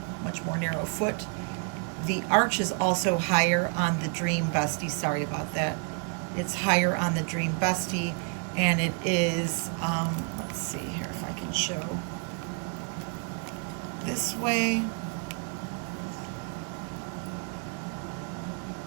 much more narrow foot. The arch is also higher on the Dream Bestie. Sorry about that. It's higher on the Dream Bestie, and it is, let's see here if I can show this way.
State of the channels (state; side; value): quieter; left; 38.5 dB